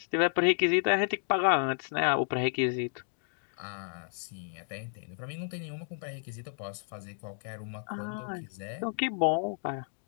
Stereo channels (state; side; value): silent; right; digital silence